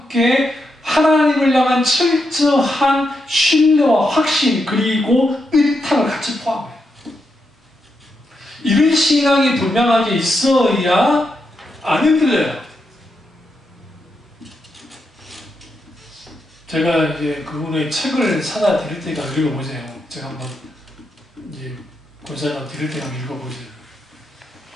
하나님을 향한 철저한 신뢰와 확신, 그리고 의탁을 같이 포함해요. 이런 신앙이 분명하게 있어야 안 흔들려요. 제가 이제 그분의 책을 사다 드릴 테니까 읽어보세요. 제가 한번 이제 권사님 드릴 테니까 읽어보세요.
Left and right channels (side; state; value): both; normal; correlation 0.83